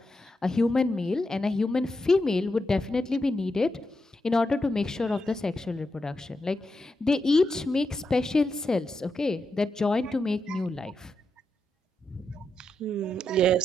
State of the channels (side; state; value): both; normal; correlation 0.85